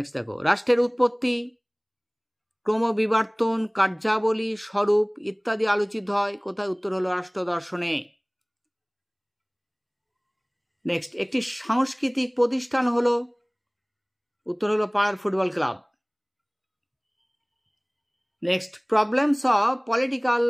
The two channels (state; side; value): identical; both; correlation 1.00